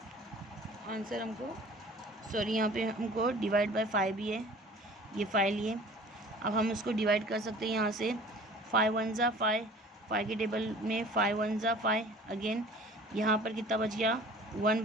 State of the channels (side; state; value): both; normal; correlation 0.46